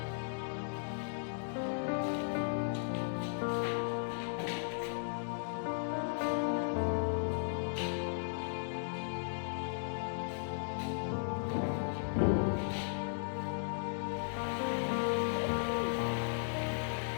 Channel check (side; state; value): right; silent; digital silence